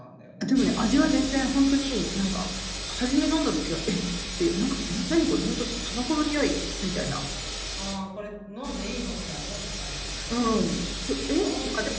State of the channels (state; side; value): identical; both; correlation 1.00